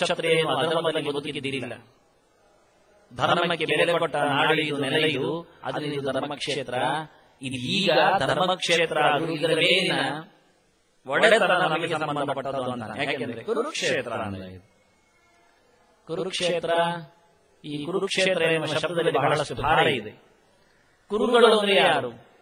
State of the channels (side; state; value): both; identical; correlation 1.00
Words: ಅಧರ್ಮದಲ್ಲಿ ಬದುಕಿದ್ದಿಲ್ಲ. ಧರ್ಮಕ್ಕೆ ಬೆಲೆ ಕೊಟ್ಟ ನಾಡಿಯು ನೆಲೆಯು ಅದರಲ್ಲಿ ಧರ್ಮಕ್ಷೇತ್ರ. ಇದು ಈಗ ಧರ್ಮಕ್ಷೇತ್ರ ಇದರ ಮೇಲಿನ ಒಡೆತನ ನಮಗೆ ಸಂಬಂಧಪಟ್ಟದು ಅಂತ. ಯಾಕೆಂದ್ರೆ ಕುರುಕ್ಷೇತ್ರ ಅಂದ್ರೆ ಕುರುಕ್ಷೇತ್ರ, ಈ ಕುರುಕ್ಷೇತ್ರ ಎಂಬ ಶಬ್ದದಲ್ಲಿ ಬಹಳಷ್ಟು ಭಾರ ಇದೆ. ಕುರುಗಳು ಅಂದ್ರೆ ಯಾರು?